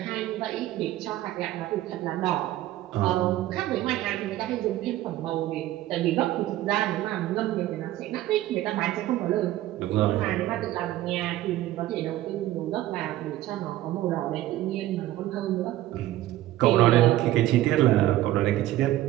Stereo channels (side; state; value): left; quieter; 14.8 dB